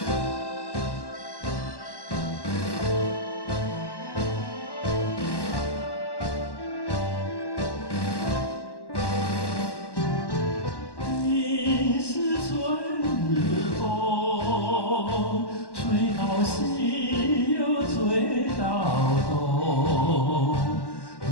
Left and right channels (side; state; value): right; late; 1.1 ms